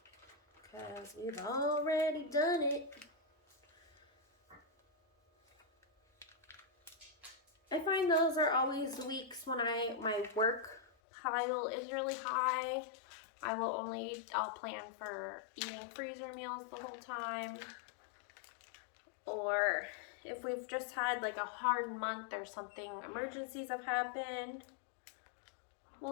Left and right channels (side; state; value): right; drops out; at 10.9 s